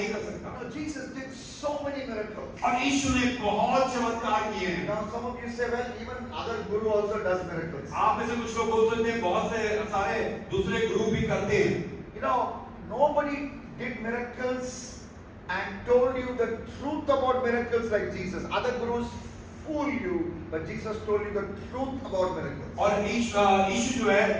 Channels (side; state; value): both; identical; correlation 1.00